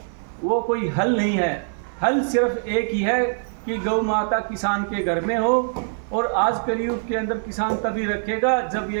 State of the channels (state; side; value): silent; left; digital silence